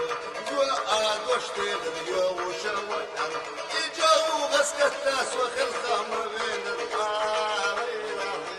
جوا دوشتي اليو وشوي يجو غسكت ناس وخل خمر بين الطار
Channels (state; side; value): identical; both; correlation 1.00